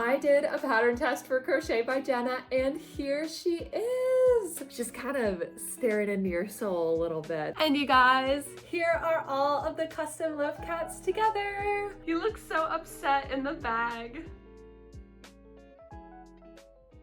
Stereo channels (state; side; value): identical; both; correlation 1.00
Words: did a pattern test for Crochet by Jenna, and here she is. Just kind of staring into your soul a little bit. And you guys, here are all of the custom loaf cats together. He looks so upset in the bag.